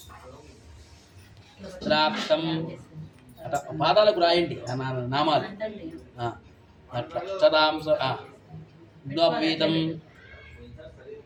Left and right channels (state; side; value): identical; both; correlation 1.00